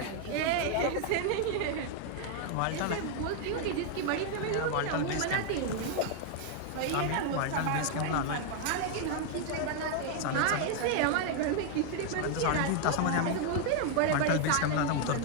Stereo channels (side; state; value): both; different; correlation 0.00